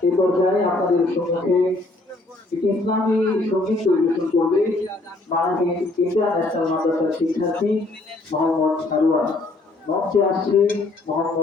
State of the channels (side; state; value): right; quieter; 3.0 dB